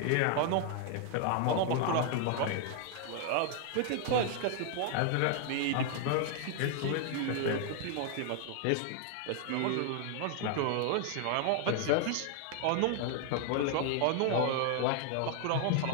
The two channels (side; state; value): both; different; correlation 0.00